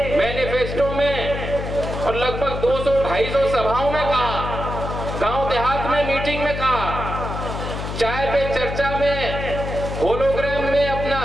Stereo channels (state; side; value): noise; left; hum, 5 dB below the sound